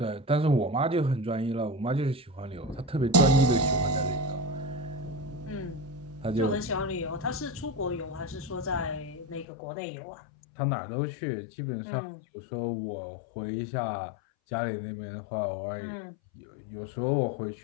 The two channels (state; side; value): drops out; right; at 9.5 s